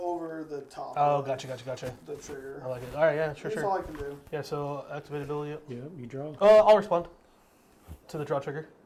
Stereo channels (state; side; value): identical; both; correlation 1.00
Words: the top. Oh, of gotcha. The trigger. I like it. All right, yeah, That's sure. all I can do. Yeah, so activate ability. Yeah, you draw. I'll respond to the draw trigger.